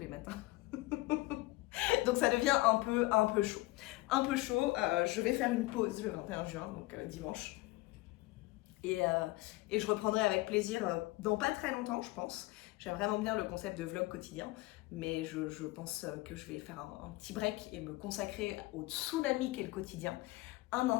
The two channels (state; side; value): quieter; right; 20.4 dB